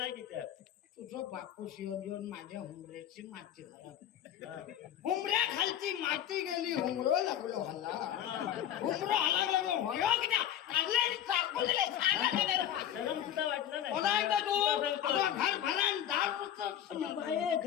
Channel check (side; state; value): right; quieter; 10.7 dB